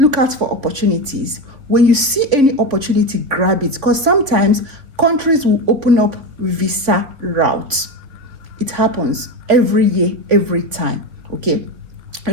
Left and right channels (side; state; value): left; late; 3.5 ms